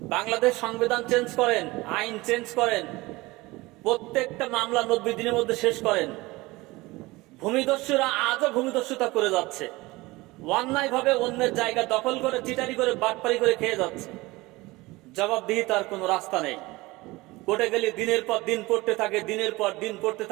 বাংলাদেশ সংবিধান চেঞ্জ করেন, আইন চেঞ্জ করেন, প্রত্যেকটা মামলা 90 দিনের মধ্যে শেষ করেন। ভূমিদস্যুরা আজও ভূমিদস্যুতা করে যাচ্ছে, অন্যায় ভাবে অন্যের জায়গা দখল করে, চিটারি করে, বাটপারি করে খেয়ে যাচ্ছে। জবাবদিহি তার কোনো রাস্তা নেই। কোর্টে গেলে দিনের পর দিন পড়তে থাকে, দিনের পর দিন পড়তে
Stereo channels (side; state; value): left; quieter; 21.2 dB